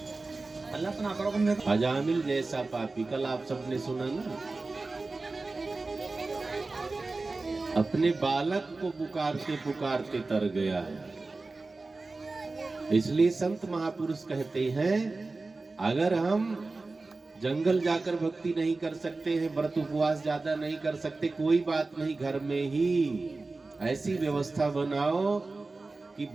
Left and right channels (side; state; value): left; quieter; 3.5 dB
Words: हल्ला तो ना करो। तुम अजामिल जैसा पापी, कल आप सबने सुना ना, अपने बालक को पुकारते पुकारते तर गया है। इसलिए संत महापुरुष कहते हैं, अगर हम जंगल जाकर भक्ति नहीं कर सकते हैं, व्रत उपवास ज्यादा नहीं कर सकते, कोई बात नहीं, घर में ही ऐसी व्यवस्था बनाओ कि